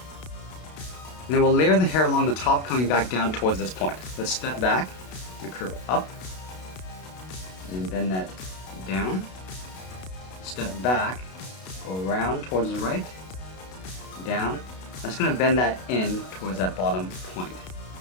And then we'll layer the hair along the top, coming back down towards this point. Let's step back and curve up, and then bend that down. Step back, go around towards the right, down. I'm just going to bend that in towards that bottom point.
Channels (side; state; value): right; late; 32 ms